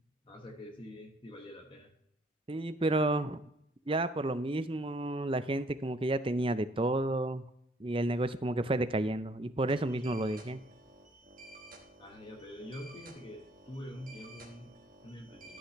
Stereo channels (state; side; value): normal; both; correlation 0.62